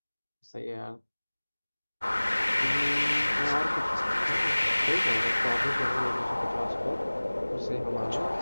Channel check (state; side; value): inverted; both; correlation -1.00